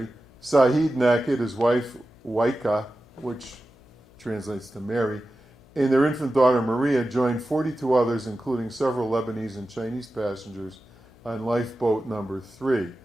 Sahid Nakid, his wife, Waika, which translates to Mary, and their infant daughter Maria joined 42 others, including several Lebanese and Chinese passengers, on lifeboat number 3.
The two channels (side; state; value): left; noise; hum, 27 dB below the sound